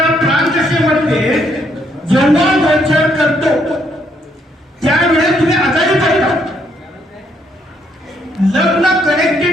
प्राणदशेमध्ये जेव्हा गोचर करतो त्यावेळेस तुम्ही आजारी पडता. लग्न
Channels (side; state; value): both; normal; correlation 0.72